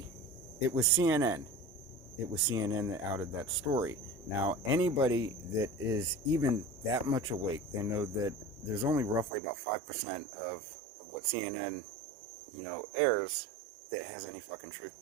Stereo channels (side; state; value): left; drops out; at 9.3 s